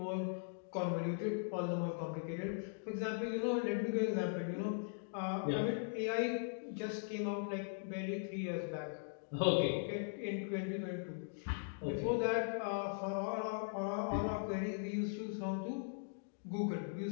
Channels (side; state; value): right; silent; digital silence